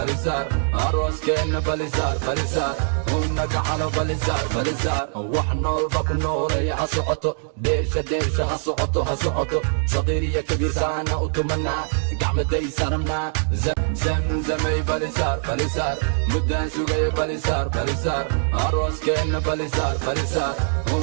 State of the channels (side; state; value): left; silent; digital silence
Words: arooskeenna balisaar balisaar una gacano balisaar balisaar wax noolba ku nooleeya ha socoto deersha deersha ha socoto ha socoto saqiir iyo kabiir saana u tumanaa gacmaday saramnaa zamzamay balisaar balisaar muddaan sugay balisaar balisaar arooskeenna balisaar balisaar